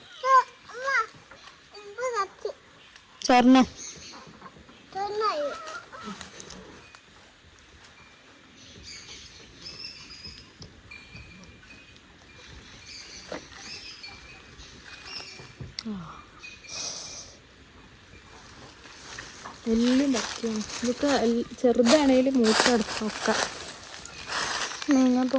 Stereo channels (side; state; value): both; identical; correlation 1.00